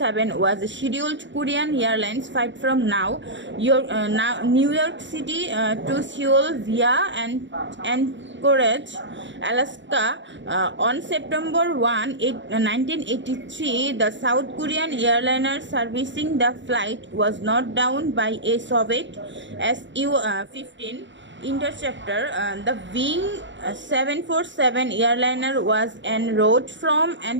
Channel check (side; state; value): left; late; 0.54 ms